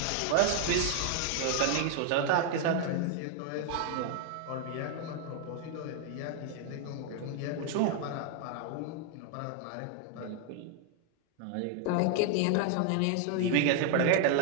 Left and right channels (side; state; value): both; different; correlation 0.00